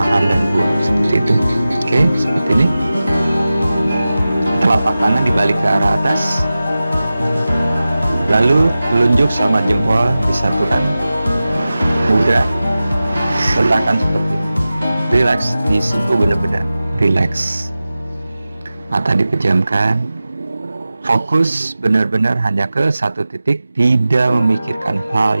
dan buang, seperti itu. Oke, seperti ini. Telapak tangan dibalik ke arah atas, lalu telunjuk sama jempol disatukan, mudah, letakkan seperti ini. Relax, disitu benar-benar relax. Mata dipejamkan, fokus benar-benar hanya ke satu titik, tidak memikirkan hal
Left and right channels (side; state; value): both; inverted; correlation -0.95